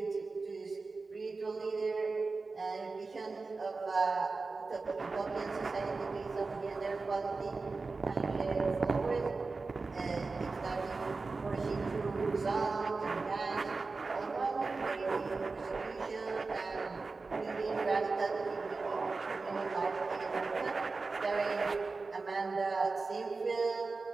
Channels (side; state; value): left; quieter; 4.0 dB